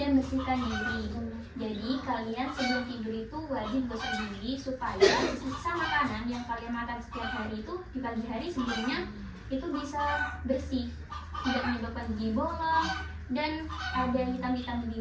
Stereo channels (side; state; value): both; identical; correlation 1.00